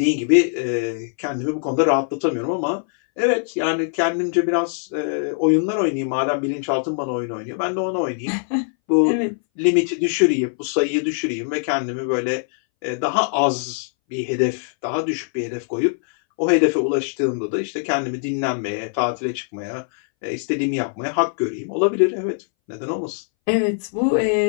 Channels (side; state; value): right; silent; 62 dB below the other